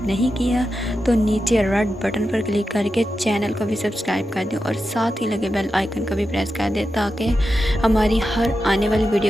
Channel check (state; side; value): normal; both; correlation 0.90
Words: नहीं किया तो नीचे रेड बटन पर क्लिक करके चैनल को भी सब्सक्राइब कर दें और साथ ही लगे बेल आइकन को भी प्रेस कर दें ताकि हमारी हर आने वाली